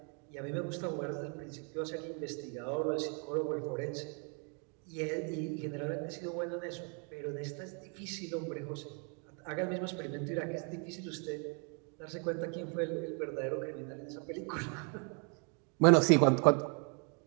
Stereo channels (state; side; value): quieter; left; 38.0 dB